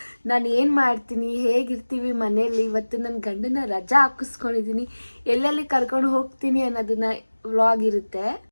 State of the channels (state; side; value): inverted; both; correlation -1.00